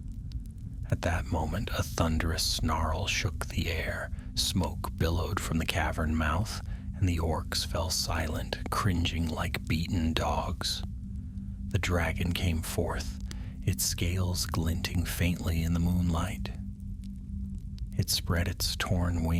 At that moment, a thunderous snarl shook the air. Smoke billowed from the cavern mouth, and the orcs fell silent, cringing like beaten dogs. The dragon came forth, its scales glinting faintly in the moonlight. It spread its torn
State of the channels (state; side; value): identical; both; correlation 1.00